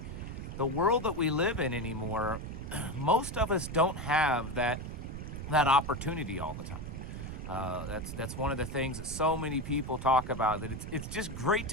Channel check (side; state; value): right; noise; rumble, 7 dB below the sound